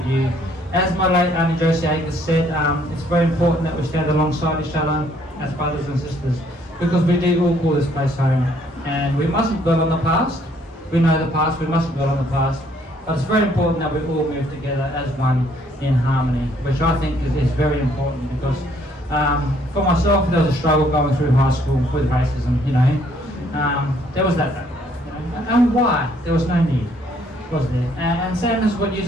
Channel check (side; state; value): both; normal; correlation 0.65